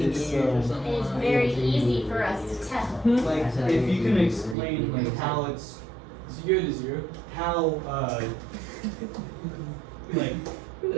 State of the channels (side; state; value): left; drops out; at 4.5 s